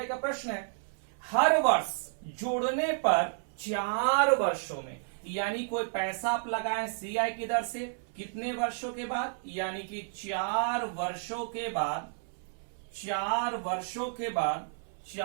का प्रश्न है, हर वर्ष जोड़ने पर 4 वर्षों में, यानी कोई पैसा आप लगाएं CI की दर से कितने वर्षों के बाद, यानी कि 4 वर्षों के बाद, 4 वर्षों के बाद,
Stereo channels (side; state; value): left; silent; 57 dB below the other